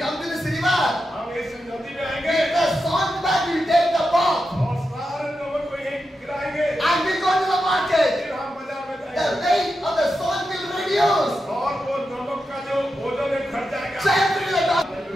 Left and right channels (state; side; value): normal; both; correlation 0.88